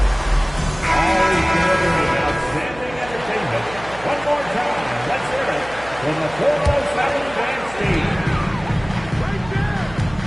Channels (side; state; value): right; noise; hum, 17 dB below the sound